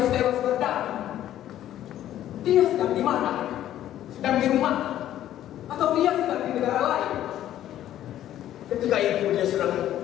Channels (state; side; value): quieter; right; 12.2 dB